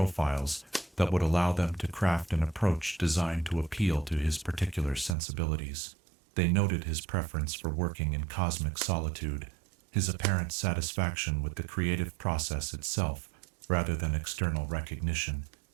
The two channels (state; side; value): drops out; left; at 5.2 s